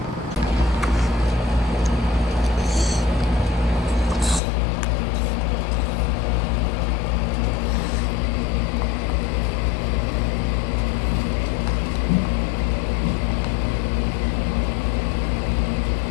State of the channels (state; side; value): drops out; right; at 4.4 s